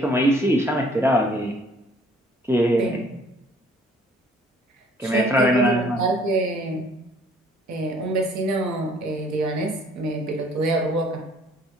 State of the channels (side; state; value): both; normal; correlation 0.58